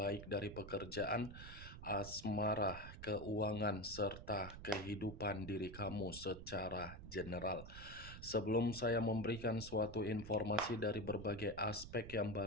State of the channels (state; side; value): noise; right; rumble, 12 dB below the sound